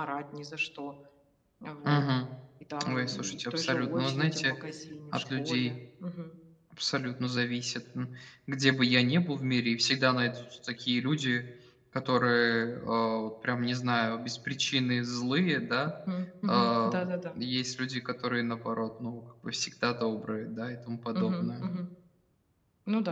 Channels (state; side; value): identical; both; correlation 1.00